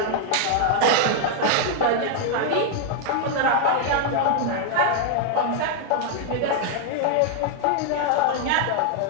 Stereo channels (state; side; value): different; both; correlation 0.00